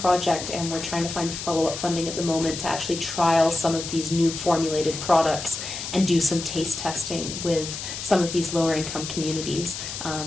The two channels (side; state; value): left; noise; hiss, 7 dB below the sound